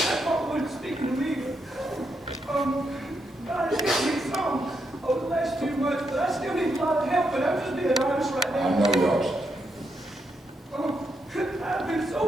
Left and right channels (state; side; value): normal; both; correlation 0.81